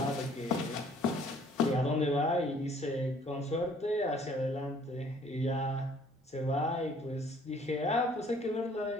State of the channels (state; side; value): normal; both; correlation 0.58